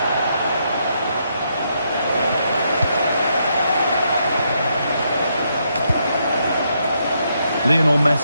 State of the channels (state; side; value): inverted; both; correlation -0.77